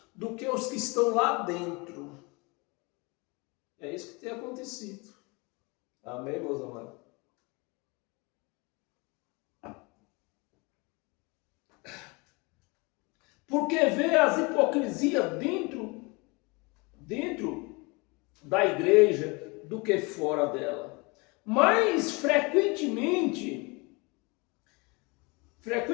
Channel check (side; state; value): right; quieter; 27.8 dB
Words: do que os que estão lá dentro. É isso que tem acontecido. Amém, meus amados? Porque vê as hipocrisias dentro da igreja do que fora dela. Mas frequentemente